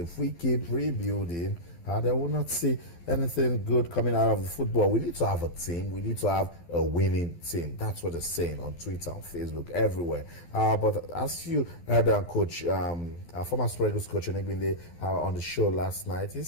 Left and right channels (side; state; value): right; late; 12 ms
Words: we keep rebuilding, they will not see anything good coming out of the football. We need to have a team. We need to have a winning team. That's what they're saying on Twitter, on Facebook, everywhere. But as you heard Coach, former Super Eagles coach Onegbinde on the show last night, he